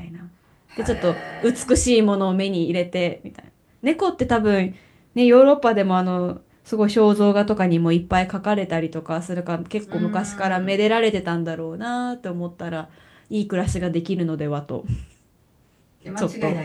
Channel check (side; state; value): both; identical; correlation 1.00